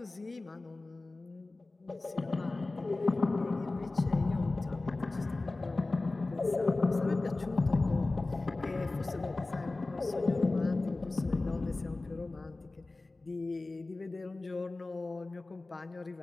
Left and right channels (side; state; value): right; quieter; 3.2 dB